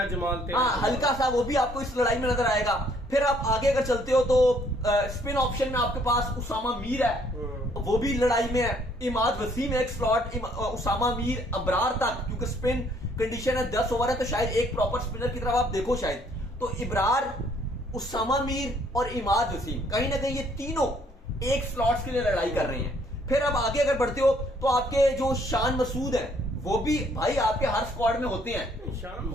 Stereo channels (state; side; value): normal; both; correlation 0.64